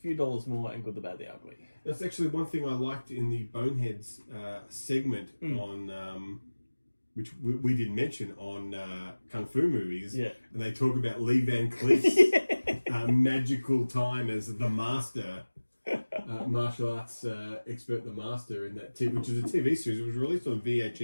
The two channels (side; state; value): both; inverted; correlation -1.00